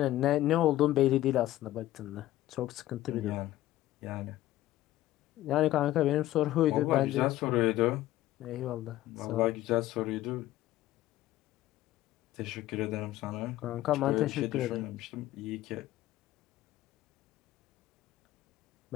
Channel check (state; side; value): quieter; right; 15.0 dB